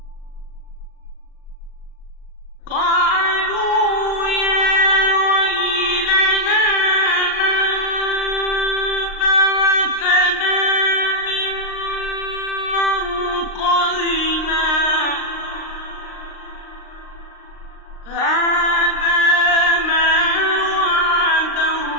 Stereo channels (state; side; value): late; right; 38 ms